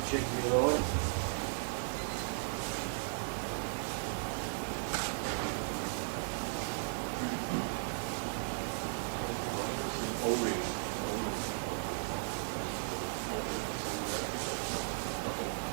check the other one.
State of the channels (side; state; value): left; silent; 54 dB below the other